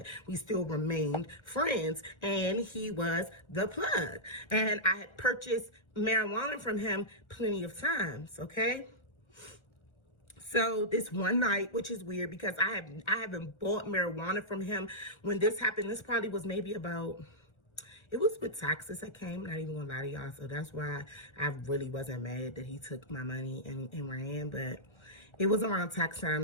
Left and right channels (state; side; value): late; right; 1.4 ms